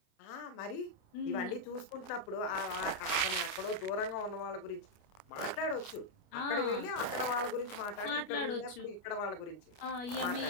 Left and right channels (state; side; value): late; right; 29 ms